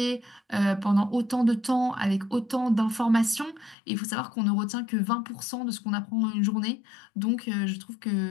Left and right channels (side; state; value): right; drops out; at 3.8 s